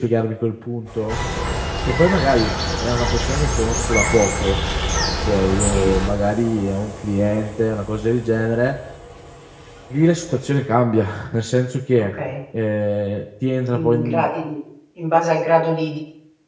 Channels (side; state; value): both; identical; correlation 1.00